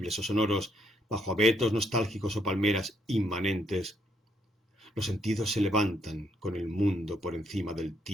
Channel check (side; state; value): both; normal; correlation 0.73